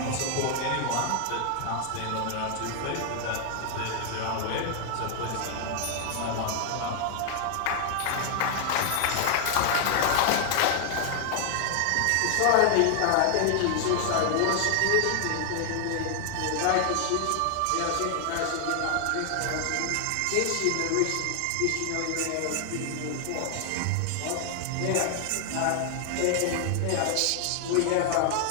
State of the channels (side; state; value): both; different; correlation 0.00